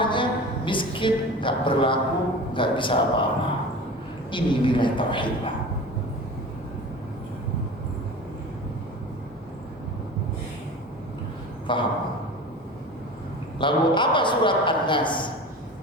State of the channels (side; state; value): both; normal; correlation 0.35